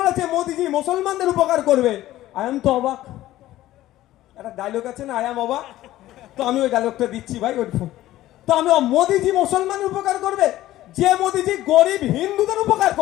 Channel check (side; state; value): right; quieter; 15.0 dB